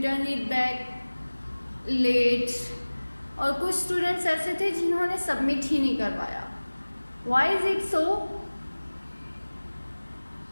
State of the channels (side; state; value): both; inverted; correlation -1.00